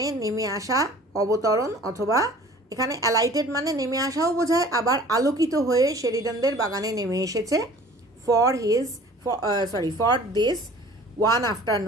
নেমে আসা, অবতরণ, অথবা এখানে অ্যালাইটেড মানে নেমে আসাও বোঝায়, আবার আলোকিত হয়ে শেরিডানদের বাগানে নেমে এসেছে। ফর দিস ওয়ান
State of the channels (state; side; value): normal; both; correlation 0.48